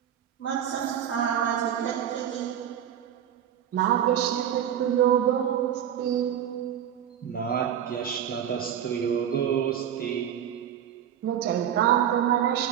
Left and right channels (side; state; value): left; quieter; 9.8 dB